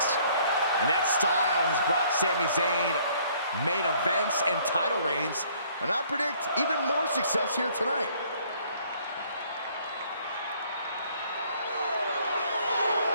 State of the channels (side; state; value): both; inverted; correlation -0.60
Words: And that style has brought Sami Zayn main events and title reigns, and I predict even more success here tonight.